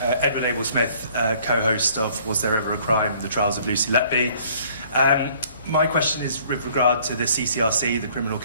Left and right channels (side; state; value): both; inverted; correlation -0.58